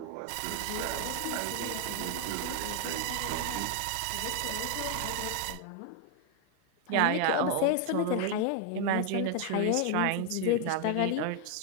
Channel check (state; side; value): different; both; correlation 0.00